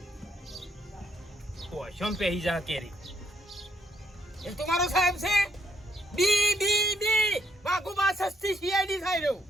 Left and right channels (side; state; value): both; normal; correlation 0.72